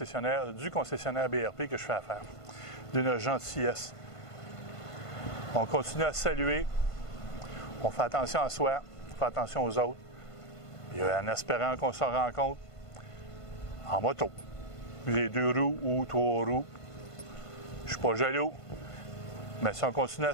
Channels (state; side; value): late; right; 1.5 ms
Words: BRP que je fais affaire. D'une gentillesse. On continue à saluer, on fait attention à soi, on fait attention aux autres, et en espérant qu'on se rencontre en moto. Les 2 roues ou 3 roues. Je ne suis pas jaloux, mais si on continue